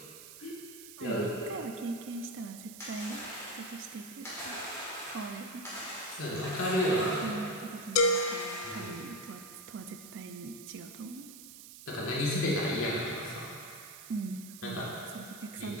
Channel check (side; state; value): right; noise; hiss, 14 dB below the sound